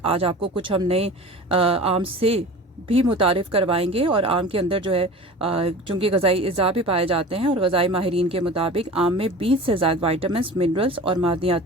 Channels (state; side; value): normal; both; correlation 0.37